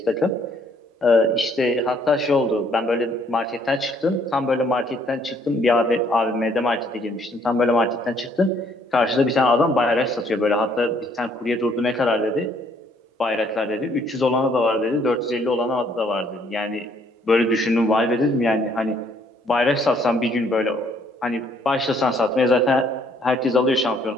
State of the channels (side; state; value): both; normal; correlation 0.65